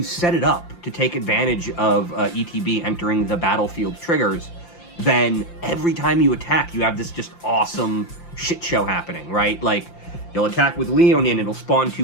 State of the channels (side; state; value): right; late; 5.8 ms